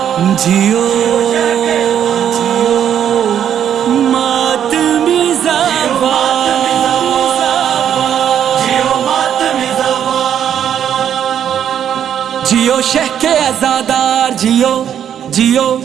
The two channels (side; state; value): left; quieter; 9.4 dB